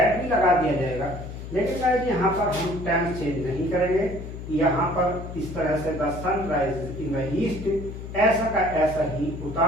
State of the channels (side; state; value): left; noise; hum, 10 dB below the sound